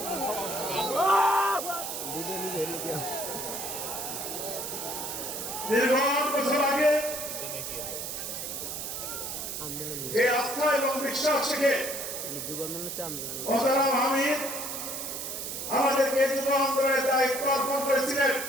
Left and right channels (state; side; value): noise; right; hiss, 5 dB below the sound